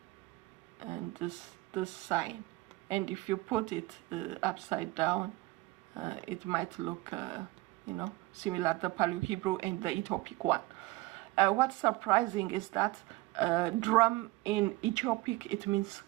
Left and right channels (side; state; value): left; quieter; 20.4 dB